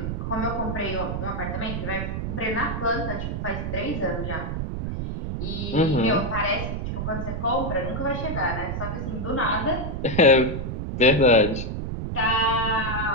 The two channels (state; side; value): noise; right; rumble, 3 dB below the sound